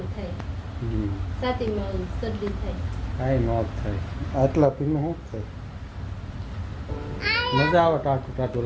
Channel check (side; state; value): both; identical; correlation 1.00